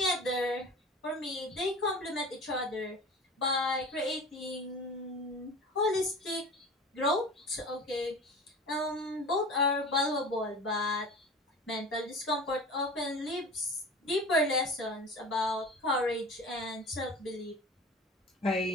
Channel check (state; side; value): normal; both; correlation 0.36